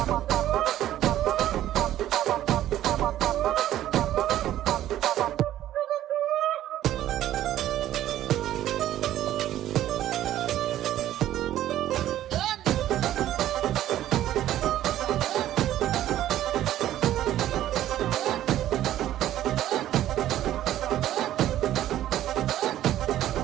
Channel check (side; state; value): left; quieter; 12.8 dB